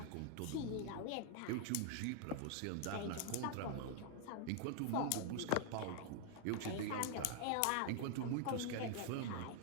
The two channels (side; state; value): both; different; correlation 0.00